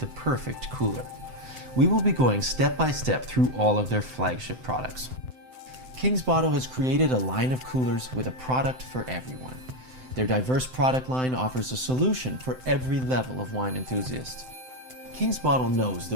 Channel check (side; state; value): left; late; 7.8 ms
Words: perfect cooler. We will be going step by step through all of their flagship products. King's Bottle has created a line of coolers with a product for everyone. Their diverse product line offers a solution for every level of wine enthusiast. King's Bottle knows